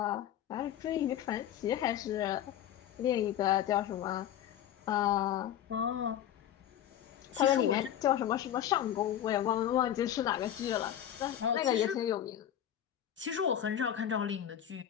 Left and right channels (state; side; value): quieter; right; 10.7 dB